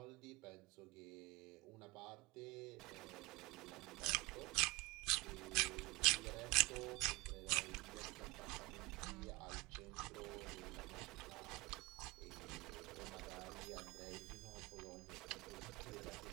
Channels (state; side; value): quieter; left; 24.5 dB